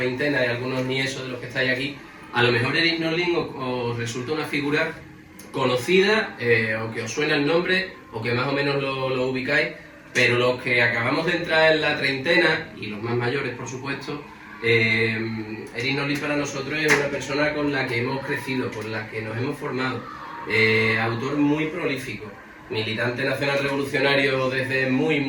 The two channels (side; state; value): both; identical; correlation 1.00